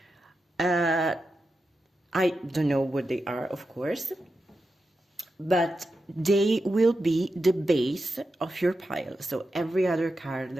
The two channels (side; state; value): both; normal; correlation 0.89